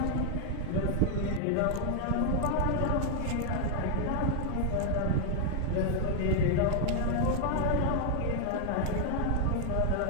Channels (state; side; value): different; both; correlation 0.00